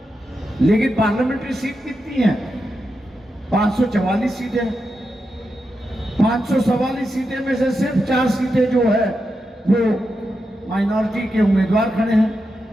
लेकिन पार्लियामेंट्री सीट कितनी है? 544 सीटें. 544 सीटें में से सिर्फ 4 सीटें जो है वो माइनॉरिटी के उम्मीदवार खड़े हैं.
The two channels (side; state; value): both; normal; correlation 0.87